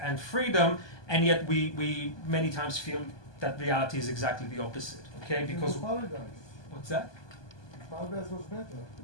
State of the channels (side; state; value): right; late; 1.2 ms